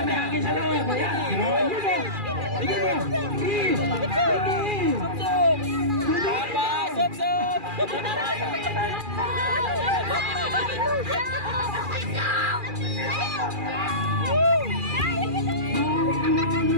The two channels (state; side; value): late; left; 2.4 ms